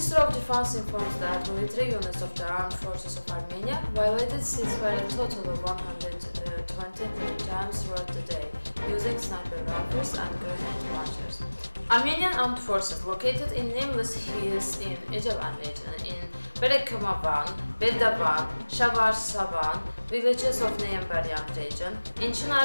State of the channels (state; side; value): inverted; both; correlation -1.00